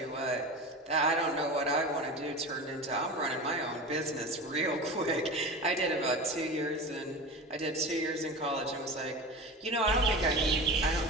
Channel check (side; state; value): both; normal; correlation 0.30